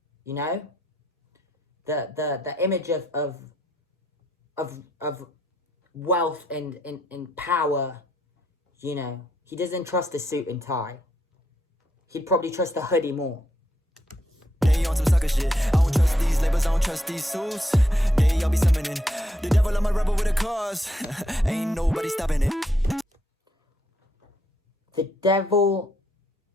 you know? The image of wealth and power, you know. He doesn't trust the suit and tie. He'd probably trust the hoodie more. They on some sucker shit. I don't trust these labels, I don't trust these suits. They all be summoning. The devil, I'm a rebel with a cause. Ain't nobody stopping it. The devil.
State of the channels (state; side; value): normal; both; correlation 0.76